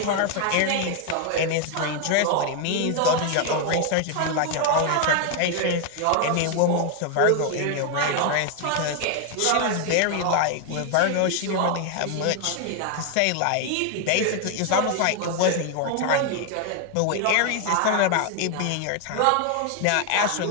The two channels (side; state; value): both; different; correlation 0.00